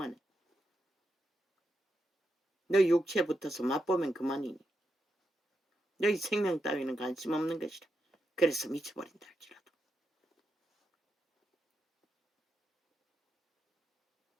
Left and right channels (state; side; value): normal; both; correlation 0.85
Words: 너희 육체에 붙어서 맛보면 그만이니 너희 생명 따위는 관심 없는 것이라. 그래서 미쳐버린다 할지라도.